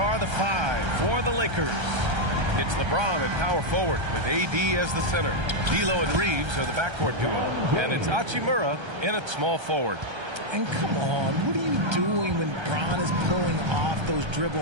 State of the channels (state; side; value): late; left; 1.3 ms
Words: the five for the Lakers. It's LeBron at power forward with AD as the center. D'Lo and Reeves are the backcourt duo. And it's Hachimura in at small forward. And come on, what are you doing when Bron is pulling off those